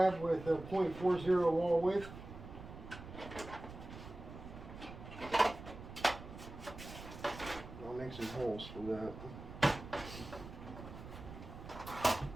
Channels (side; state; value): right; noise; rumble, 13 dB below the sound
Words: with a .40 wall width. I'll make some holes for that.